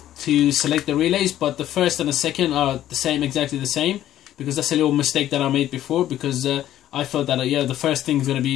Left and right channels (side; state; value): right; quieter; 12.5 dB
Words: to select the relays, but the first and the second are the same, exactly the same, because that's a little mistake that I made before, because I thought that yeah, the first thing is going to